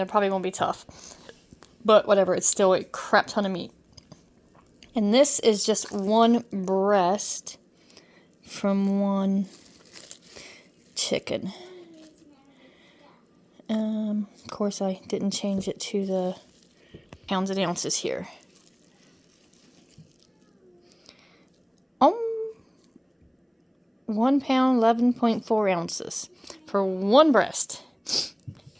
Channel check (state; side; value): identical; both; correlation 1.00